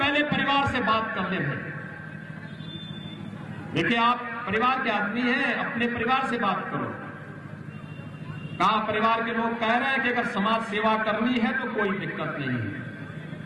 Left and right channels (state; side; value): identical; both; correlation 1.00